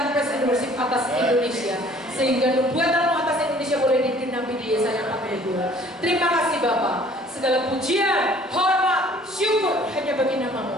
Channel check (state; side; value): normal; both; correlation 0.54